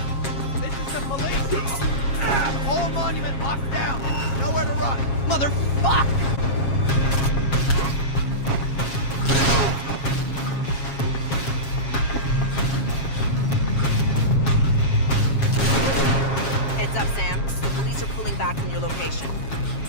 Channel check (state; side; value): late; right; 7.3 ms